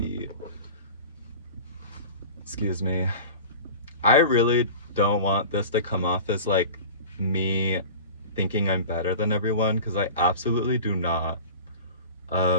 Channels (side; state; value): both; inverted; correlation -0.36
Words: excuse me, I really don't want this to come off as like me thinking I'm better than everyone, because I absolutely do not.